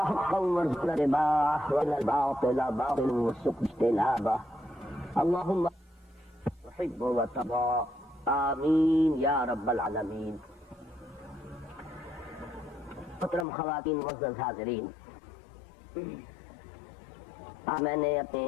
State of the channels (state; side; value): drops out; right; at 13.5 s